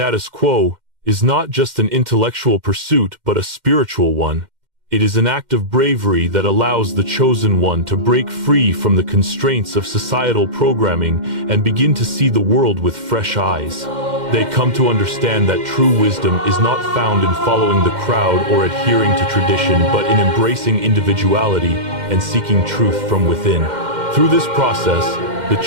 quo is not just an intellectual pursuit but a spiritual one. It is an act of bravery that allows the chosen one to break free from the constraints of societal programming and begin to see the world with fresh eyes. They come to understand that true wisdom is not found in following the crowd or adhering to tradition, but in embracing individuality and seeking truth from within. Through this process, the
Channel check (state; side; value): late; left; 2.1 ms